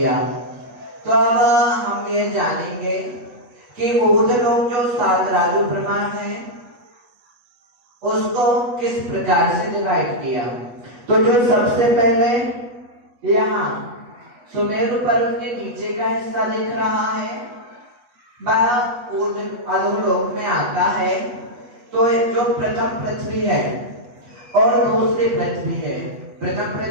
तो अब हम ये जानेंगे कि ऊर्ध्वलोक जो 7 राजू प्रमाण है उसको किस प्रकार से डिवाइड किया। तो जो सबसे पहले यहाँ सुमेरु पर्वत के नीचे का हिस्सा दिख रहा है वह अधोलोक में आता है। तो जो प्रथम पृथ्वी है और दूसरी पृथ्वी है, प्रथम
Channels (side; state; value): left; late; 8.2 ms